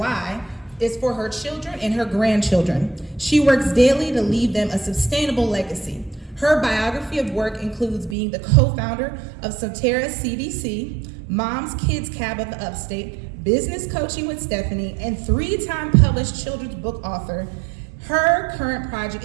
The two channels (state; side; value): drops out; left; at 8.2 s